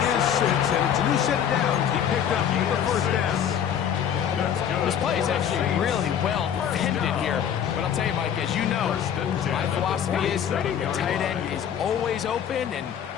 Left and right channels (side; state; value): right; quieter; 8.9 dB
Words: is 6, and it's a new set of downs. He picked up the first down. This play is actually really well defended here. But I'll tell you, Mike, as you know, my philosophy is the tight end is always open, and